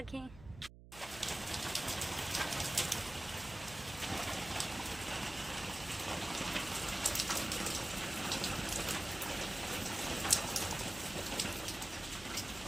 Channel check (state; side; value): noise; right; hum, 17 dB below the sound